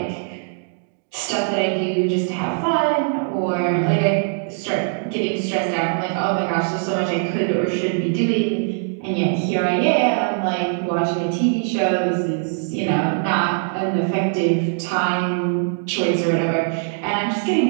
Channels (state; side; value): silent; left; 65 dB below the other